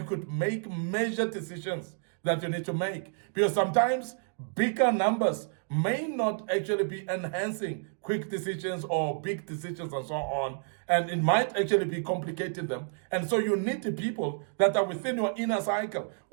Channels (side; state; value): left; silent; 58 dB below the other